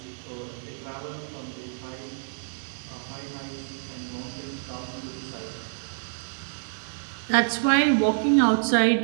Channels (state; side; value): silent; left; digital silence